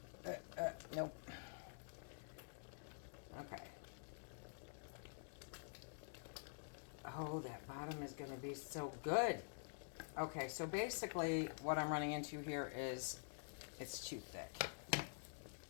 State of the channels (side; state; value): right; silent; digital silence